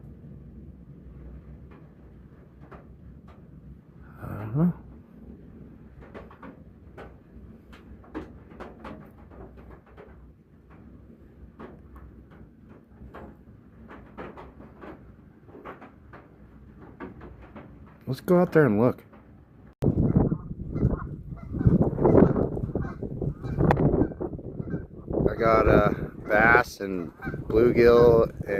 I don't know. Let's go out there and look. I got bass and bluegill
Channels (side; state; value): both; identical; correlation 1.00